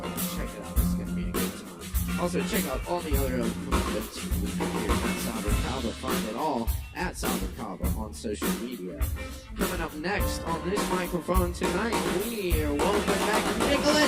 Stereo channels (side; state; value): both; identical; correlation 1.00